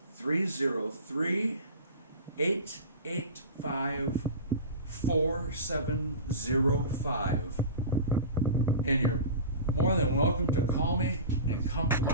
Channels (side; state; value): both; inverted; correlation -0.32